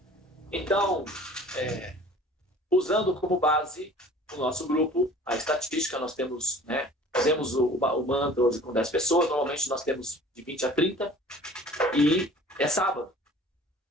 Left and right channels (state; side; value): normal; both; correlation 0.47